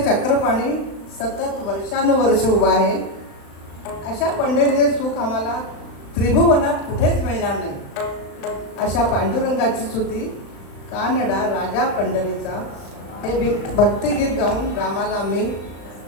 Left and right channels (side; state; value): right; late; 35 ms